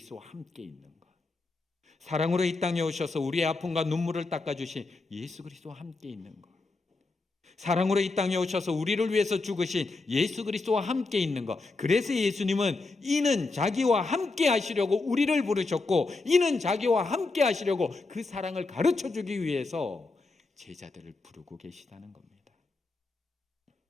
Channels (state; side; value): quieter; right; 3.6 dB